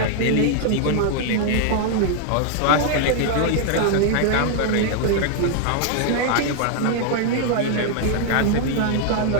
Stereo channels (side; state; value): both; different; correlation 0.00